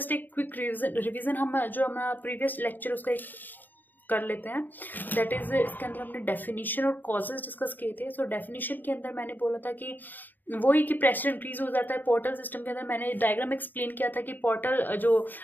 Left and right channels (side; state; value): right; late; 0.089 ms